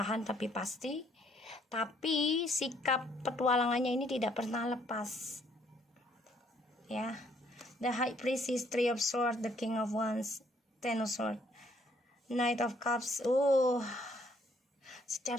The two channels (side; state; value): both; normal; correlation 0.66